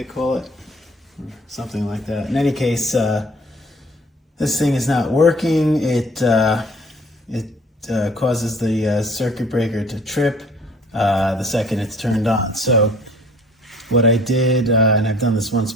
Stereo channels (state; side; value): normal; both; correlation 0.53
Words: call it, something like that. In any case, this thing is not working. It causes the circuit breaker to trip the second it's turned on. So what I did, and I've done this once